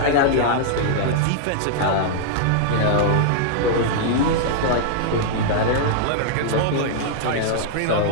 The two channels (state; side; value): different; both; correlation -0.01